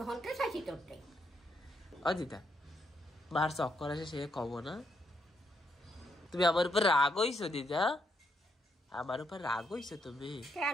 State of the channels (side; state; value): both; normal; correlation 0.77